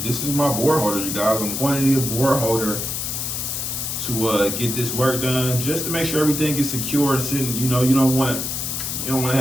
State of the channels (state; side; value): noise; left; hiss, 3 dB below the sound